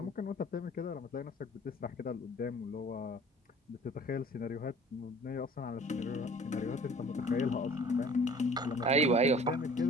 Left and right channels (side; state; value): both; normal; correlation 0.49